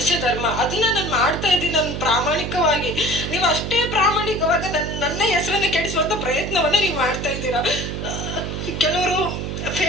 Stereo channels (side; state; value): right; noise; hum, 4 dB below the sound